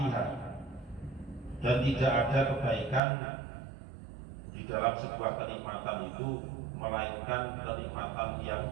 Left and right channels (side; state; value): left; drops out; at 3.0 s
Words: dan tidak ada kebaikan di dalam sebuah kenikmatan itu melainkan kenikmatan yang